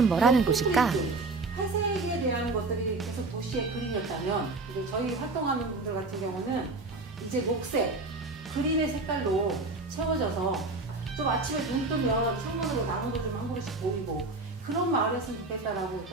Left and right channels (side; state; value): left; quieter; 3.4 dB